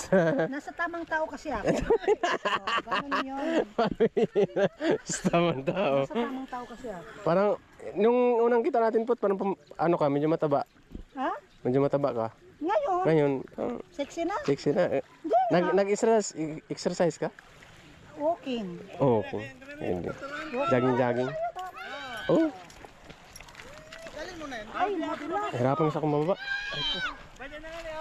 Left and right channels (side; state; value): both; identical; correlation 1.00